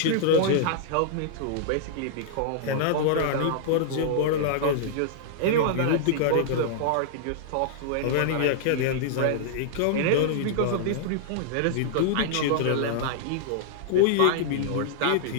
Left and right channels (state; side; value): different; both; correlation -0.01